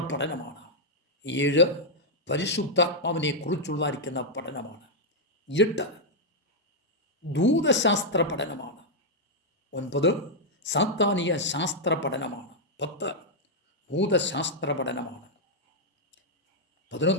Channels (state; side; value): normal; both; correlation -0.04